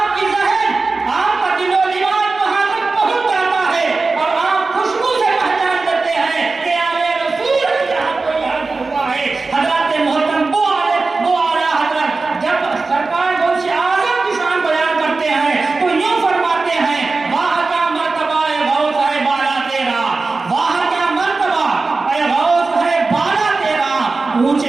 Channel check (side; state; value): left; quieter; 3.8 dB